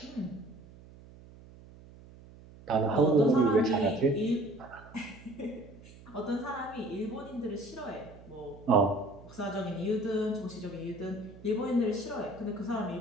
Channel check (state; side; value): noise; right; hum, 20 dB below the sound